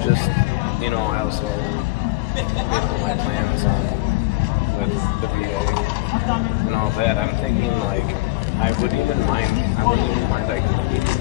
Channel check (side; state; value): right; quieter; 21.2 dB